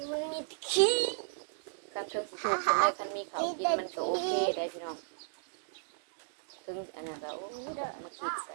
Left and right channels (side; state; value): left; silent; digital silence